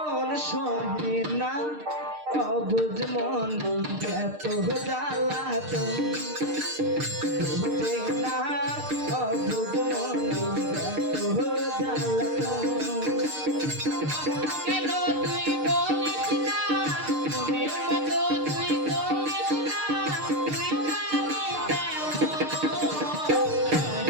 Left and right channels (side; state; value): left; late; 6.6 ms